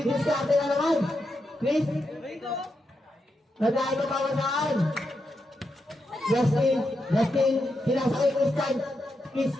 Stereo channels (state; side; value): normal; both; correlation 0.85